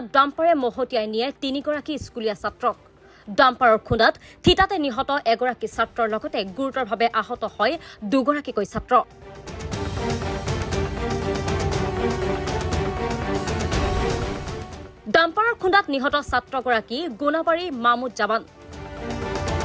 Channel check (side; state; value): both; identical; correlation 1.00